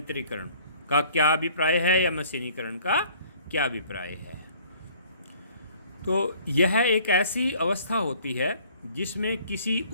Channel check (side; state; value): both; inverted; correlation -0.55